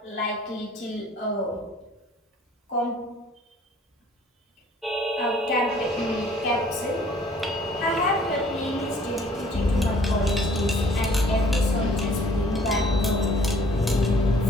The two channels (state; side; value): normal; both; correlation 0.57